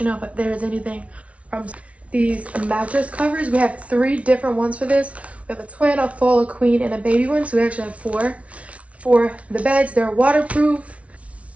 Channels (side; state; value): left; late; 0.064 ms